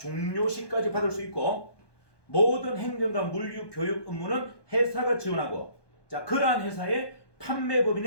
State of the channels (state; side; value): late; right; 1.2 ms